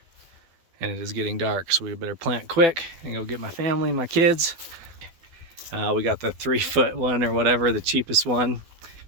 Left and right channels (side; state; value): left; late; 12 ms